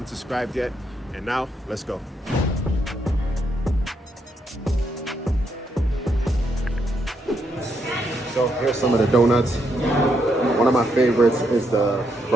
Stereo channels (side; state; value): both; normal; correlation 0.78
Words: subscribed yet. And now, let's go. So here's some of the donuts. One of my favorites is the